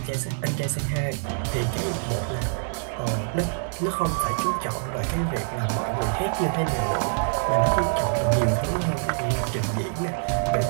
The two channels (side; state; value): left; silent; digital silence